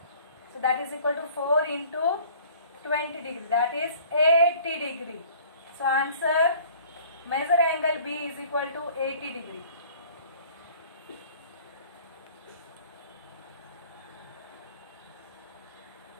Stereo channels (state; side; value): inverted; both; correlation -0.51